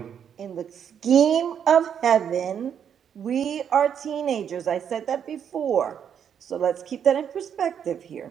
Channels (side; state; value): left; quieter; 8.3 dB